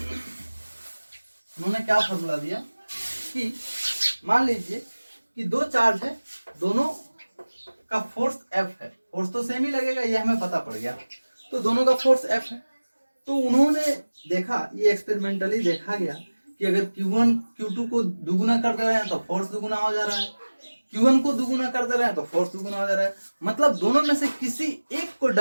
उन्होंने क्या फॉर्मूला दिया कि मान लीजिए कि दो चार्ज है, दोनों का फोर्स F है, फोर्स तो सेम ही लगेगा, ये हमें पता पड़ गया। तो दोनों का फोर्स F है। तो उन्होंने देखा, ये एक्सपेरिमेंटली देखा गया कि अगर Q1 Q2 को दुगुना कर दे रहे हैं तो फोर्स दुगुना हो जा रहा है, Q1 को दुगुना कर दे रहे हैं तो फोर्स दुगुना हो जा रहा है, मतलब दोनों में से किसी एक को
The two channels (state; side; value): inverted; both; correlation -1.00